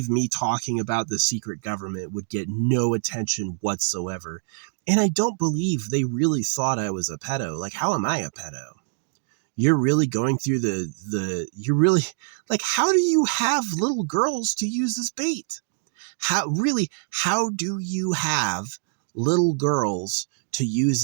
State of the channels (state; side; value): silent; left; digital silence